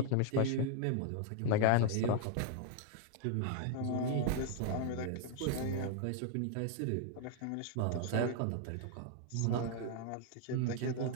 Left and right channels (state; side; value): different; both; correlation -0.01